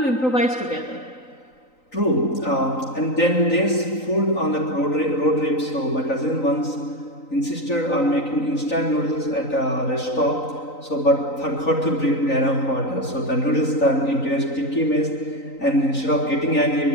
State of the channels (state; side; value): late; right; 3.9 ms